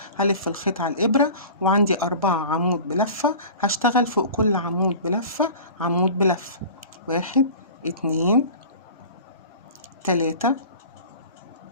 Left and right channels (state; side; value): inverted; both; correlation -0.39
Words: هلف الخيط على الإبرة وعندي 4 عمود بلفة. هشتغل فوق كل عمود بلفة عمود بلفة. 1 2 3